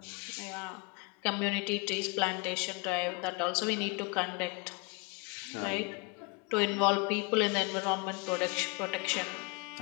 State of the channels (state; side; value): quieter; right; 30.3 dB